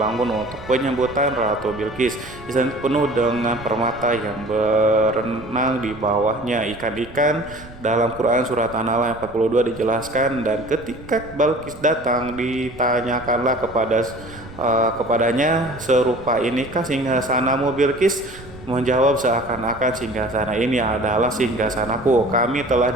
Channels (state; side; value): noise; right; rumble, 17 dB below the sound